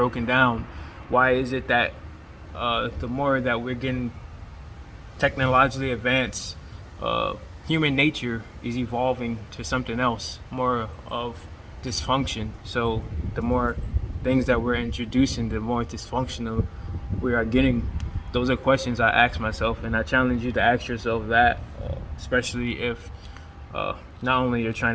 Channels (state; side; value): identical; both; correlation 1.00